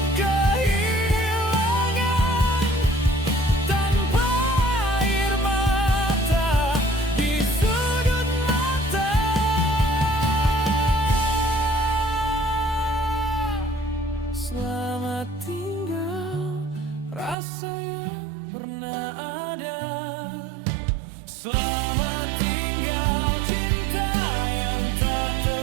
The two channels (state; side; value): drops out; left; at 17.4 s